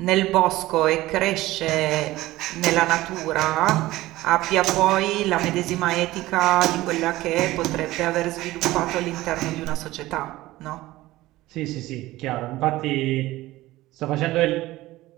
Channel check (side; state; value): left; quieter; 17.4 dB